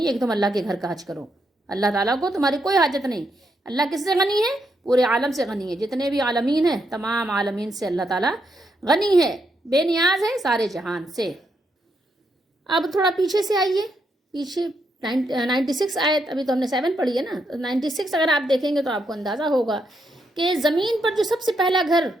ہے کہ تم اللہ کے گھر کا حج کرو، اللہ تعالیٰ کو تمہاری کوئی حاجت نہیں۔ اللہ کس سے غنی ہے؟ پورے عالم سے غنی ہے، جتنے بھی عالمین ہیں تمام عالمین سے اللہ تعالیٰ غنی ہے، بے نیاز ہے سارے جہان سے۔ اب تھوڑا پیچھے سے آئیے، پیچھے 96 آیت، ابھی تو ہم نے 7 پڑھی ہے نا، 96 اگر آپ دیکھیں گے تو آپ کو اندازہ ہوگا کہ زمین پر جو سب سے پہلا گھر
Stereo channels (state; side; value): normal; both; correlation 0.79